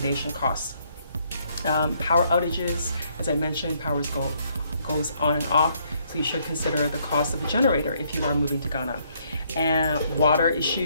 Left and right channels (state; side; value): inverted; both; correlation -0.69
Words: costs. Power outages, as I mentioned, power goes on and off, so you should consider the cost of a generator if you are moving to Ghana. And water